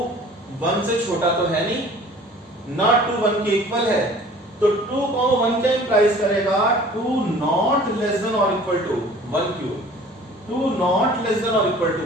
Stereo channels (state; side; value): normal; both; correlation 0.48